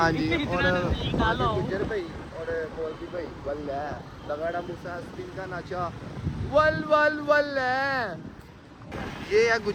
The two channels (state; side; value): identical; both; correlation 1.00